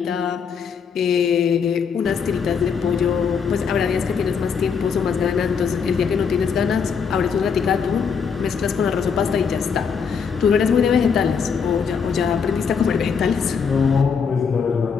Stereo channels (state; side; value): quieter; right; 6.3 dB